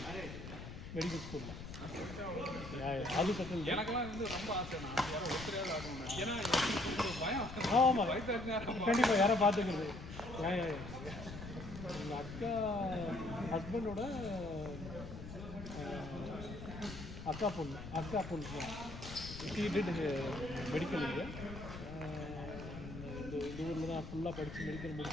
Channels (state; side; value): noise; left; rumble, 10 dB below the sound